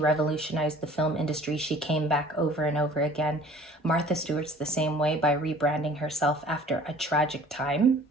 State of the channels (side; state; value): both; normal; correlation 0.49